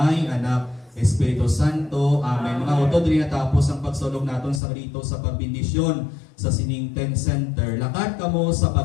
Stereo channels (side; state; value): right; drops out; at 4.6 s